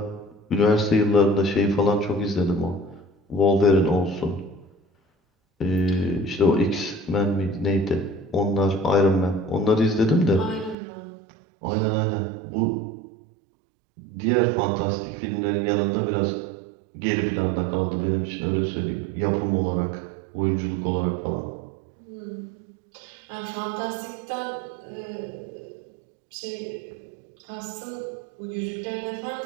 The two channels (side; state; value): left; drops out; at 10.8 s